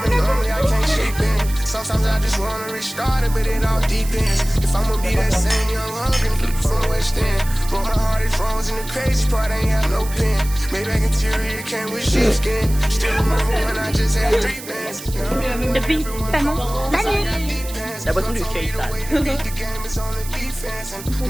Sometimes I just wanna restart it, but it all depends. If I'ma be that same young hungry from West End, but my heart is frozen. The crazy part ain't have no pen. Maybach interior came with sheepskin. Still remember when I just had 3 bands. Depuis tellement d'années. La boisson du cake. Il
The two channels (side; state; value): right; noise; hiss, 13 dB below the sound